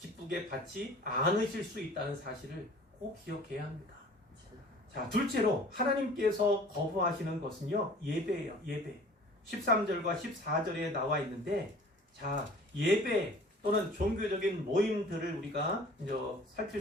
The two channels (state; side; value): normal; both; correlation 0.47